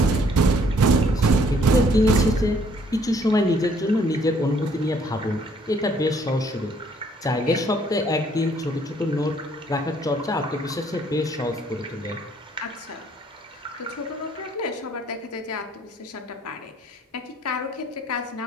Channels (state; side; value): normal; both; correlation 0.63